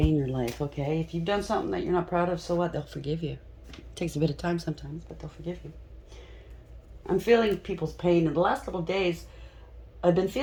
your life, okay? If you've done something that you're not proud of, so what? They'll forgive you. It takes a bit of time sometimes, but they'll forgive you. I'm feeling people's pain. In the last couple of days, I've been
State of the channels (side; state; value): both; identical; correlation 1.00